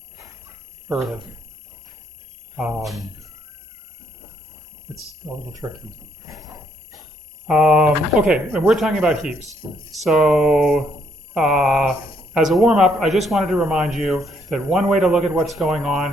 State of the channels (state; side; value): normal; both; correlation 0.71